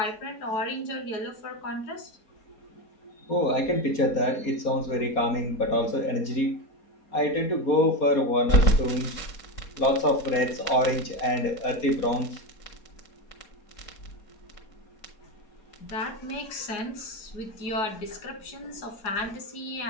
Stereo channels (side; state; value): right; late; 4.2 ms